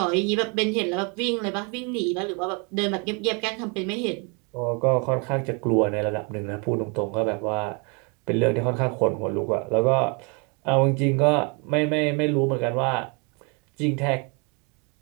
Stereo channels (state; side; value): quieter; left; 33.8 dB